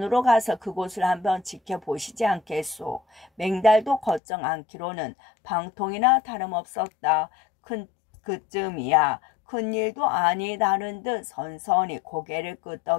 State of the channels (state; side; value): drops out; right; at 4.2 s